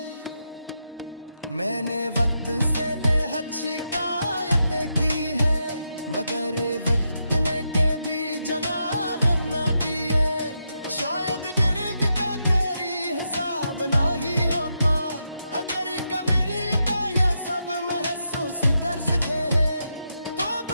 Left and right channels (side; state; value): both; inverted; correlation -0.84